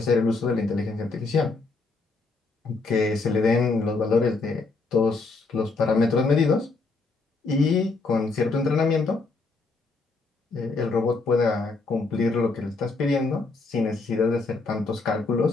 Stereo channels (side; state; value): right; quieter; 3.9 dB